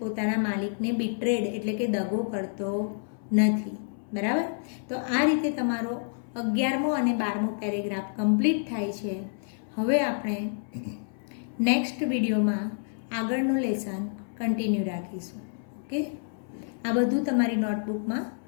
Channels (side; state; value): right; silent; 59 dB below the other